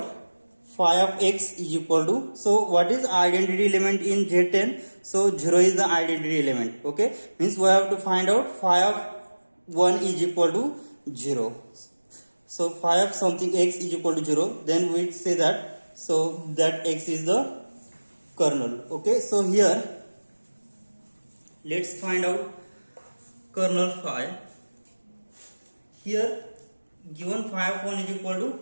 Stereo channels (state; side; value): inverted; both; correlation -1.00